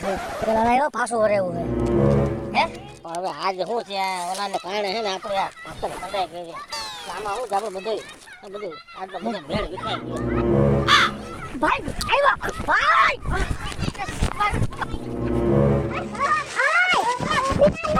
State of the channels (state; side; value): identical; both; correlation 1.00